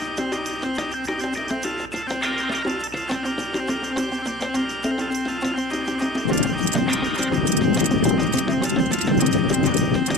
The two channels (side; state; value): right; noise; hum, 18 dB below the sound